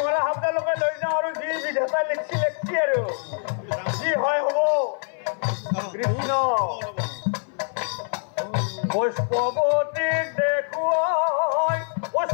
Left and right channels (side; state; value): right; silent; 57 dB below the other